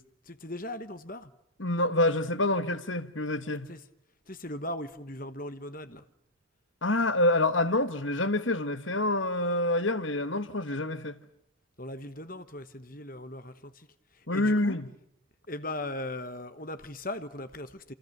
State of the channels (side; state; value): both; normal; correlation -0.03